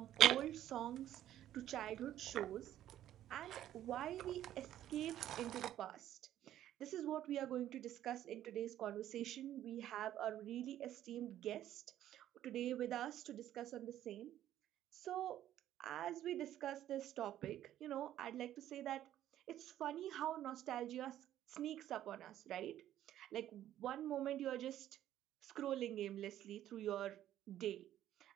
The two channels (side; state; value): left; quieter; 12.2 dB